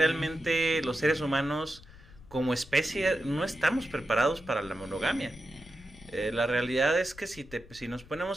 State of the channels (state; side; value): noise; left; rumble, 21 dB below the sound